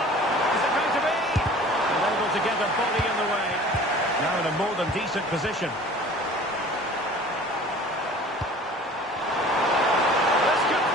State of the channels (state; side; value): normal; both; correlation 0.46